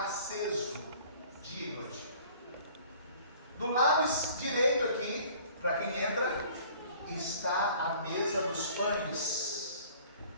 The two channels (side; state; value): both; inverted; correlation -0.52